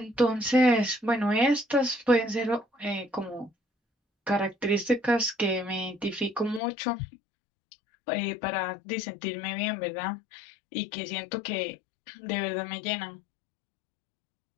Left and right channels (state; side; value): drops out; right; at 6.6 s